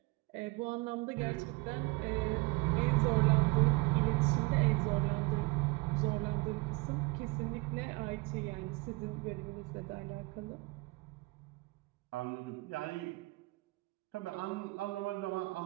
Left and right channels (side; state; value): left; quieter; 24.1 dB